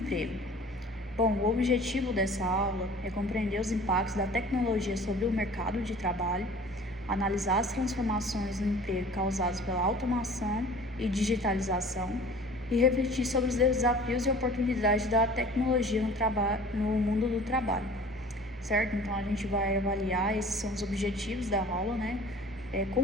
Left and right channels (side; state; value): both; normal; correlation 0.46